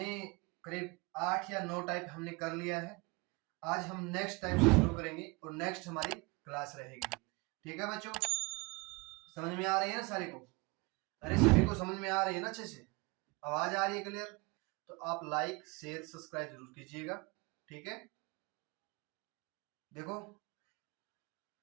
करीब 8 या 9 टाइप हमने कर लिया है। आज हम नेक्स्ट टाइप से शुरू करेंगे और नेक्स्ट हमारी क्लास रहेगी। ठीक है बच्चों, समझ में आ रही है ना सारे को? अरे सभी को समझ में आ रही है ना? अच्छे से आवाज आ रही है क्लियर? तो आप लाइक शेयर सब्सक्राइब जरूर कीजिएगा। ठीक है, देखो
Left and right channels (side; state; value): left; quieter; 26.9 dB